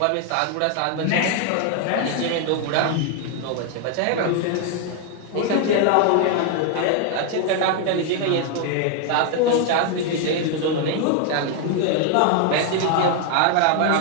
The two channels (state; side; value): different; both; correlation 0.00